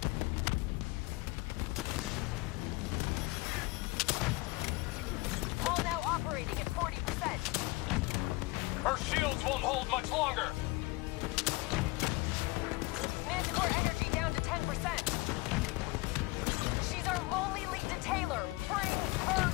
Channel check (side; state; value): right; quieter; 22.8 dB